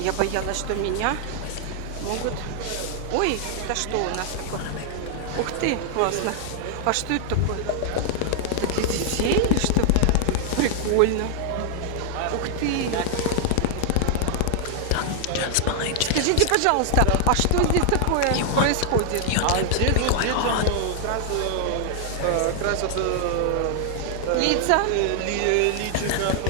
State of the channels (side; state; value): both; different; correlation 0.00